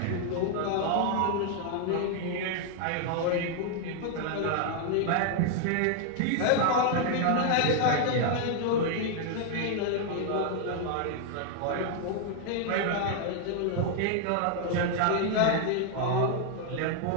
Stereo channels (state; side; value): different; both; correlation 0.00